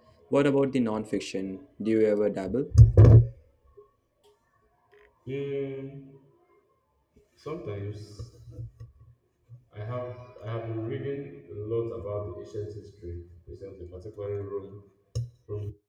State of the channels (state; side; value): identical; both; correlation 1.00